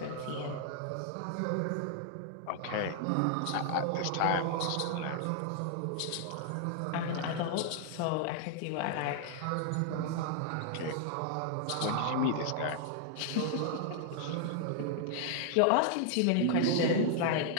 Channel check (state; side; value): different; both; correlation 0.00